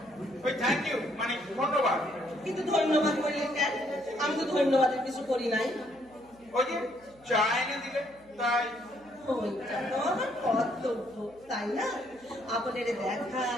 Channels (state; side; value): noise; right; hum, 28 dB below the sound